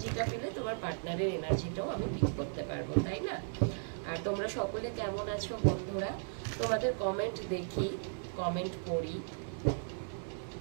পেলে তোমার পার্টনারের এনার্জিটাও আমি পিক করতে পারবো, তাই না? আর তোমরা সকলে কেমন আছো বন্ধুরা? তোমাদের কমেন্ট দেখি, কমেন্ট পড়ি।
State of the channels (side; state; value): left; silent; 54 dB below the other